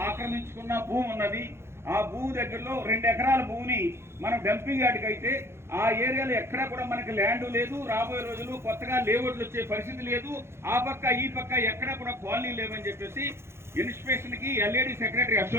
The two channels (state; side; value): late; left; 0.12 ms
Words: ఆక్రమించుకున్న భూమి ఉన్నది. ఆ భూమి దగ్గరలో 2 ఎకరాల భూమిని మనం డంపింగ్ యార్డ్కి అయితే ఆ ఏరియాలో ఎక్కడా కూడా మనకి ల్యాండ్ లేదు. రాబోయే రోజులు కొత్తగా లేఅవుట్లు వచ్చే పరిస్థితి లేదు. ఆ పక్క ఈ పక్క ఎక్కడా కూడా కాలనీ లేవని చెప్పేసి ఇన్స్పెక్షన్ కి ఎల్ఏడి సెక్రటరీ